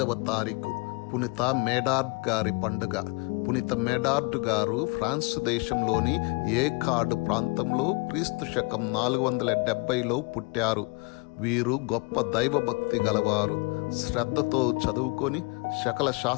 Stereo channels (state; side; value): quieter; right; 29.8 dB